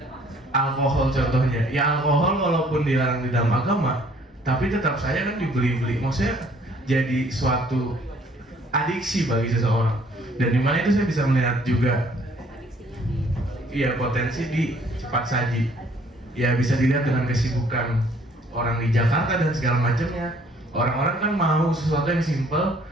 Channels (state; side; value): normal; both; correlation 0.60